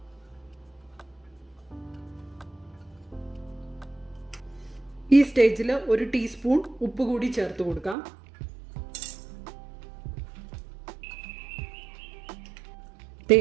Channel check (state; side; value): drops out; left; at 8.0 s